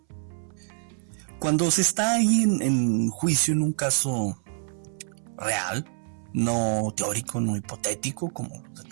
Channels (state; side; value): silent; left; 61 dB below the other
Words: Cuando se está ahí en juicio en un caso real, no teórico, no hipotético como los de